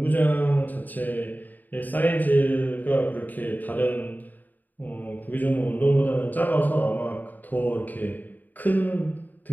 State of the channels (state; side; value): late; right; 0.085 ms